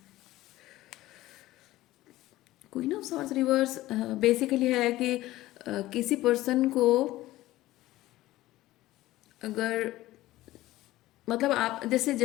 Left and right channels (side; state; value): right; quieter; 16.6 dB